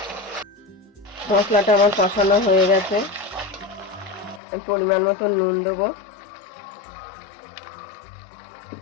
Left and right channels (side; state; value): right; drops out; at 4.4 s